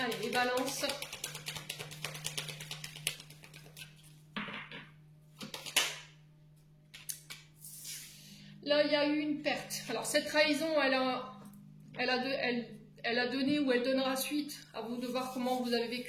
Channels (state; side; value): identical; both; correlation 1.00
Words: les balances. Là, il y a eu une perte. Alors, cette trahison, elle a donné ou elle donnera suite. À vous de voir comment vous avez